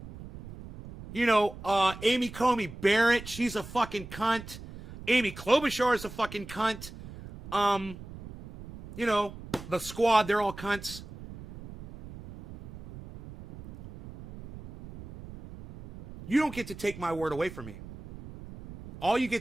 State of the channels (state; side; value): noise; right; rumble, 14 dB below the sound